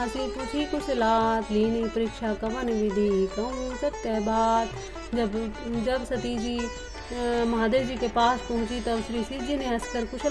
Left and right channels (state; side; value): identical; both; correlation 1.00